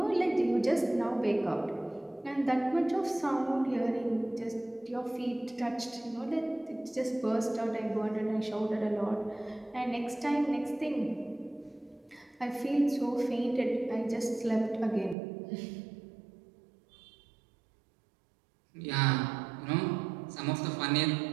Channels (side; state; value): left; drops out; at 15.2 s